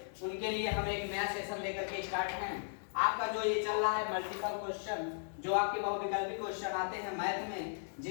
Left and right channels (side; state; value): right; silent; digital silence